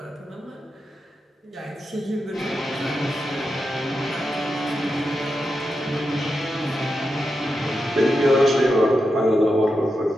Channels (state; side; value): normal; both; correlation 0.88